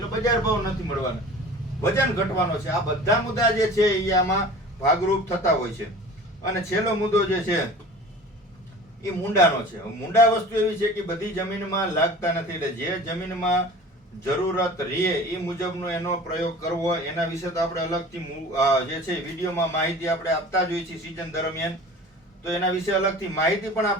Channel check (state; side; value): normal; both; correlation 0.41